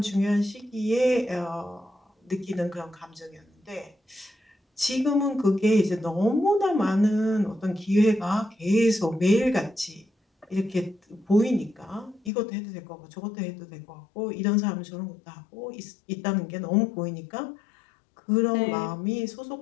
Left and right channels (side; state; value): right; drops out; at 12.3 s